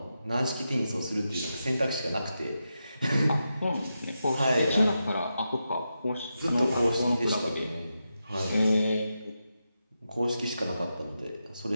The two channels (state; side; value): inverted; both; correlation -0.88